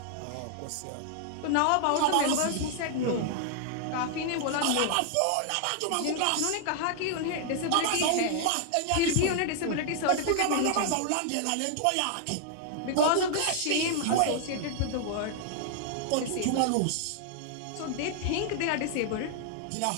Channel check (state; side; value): different; both; correlation 0.00